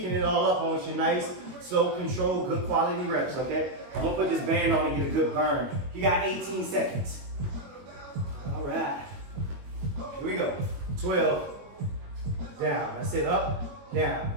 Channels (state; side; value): late; left; 21 ms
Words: it all up on you. Nice, slow, control, good quality reps, okay? I'm gonna put this band on and get a good burn. You got 18 seconds. All right. Here we go. 12. Down. That's it. Up,